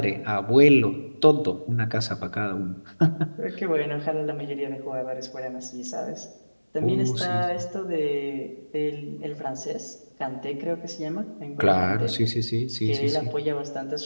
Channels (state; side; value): inverted; both; correlation -1.00